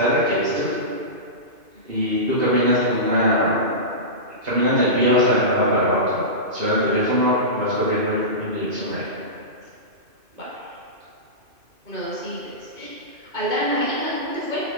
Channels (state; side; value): late; left; 2.5 ms